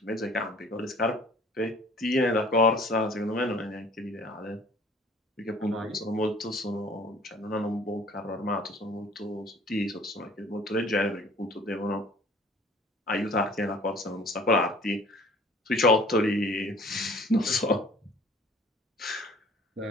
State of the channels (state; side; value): normal; both; correlation 0.52